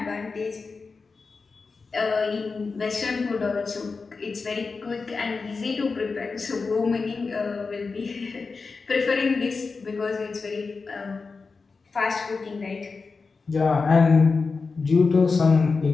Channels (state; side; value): quieter; right; 4.4 dB